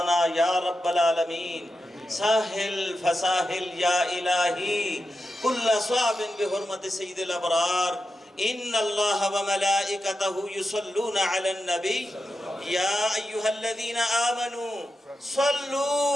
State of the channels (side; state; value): both; normal; correlation 0.89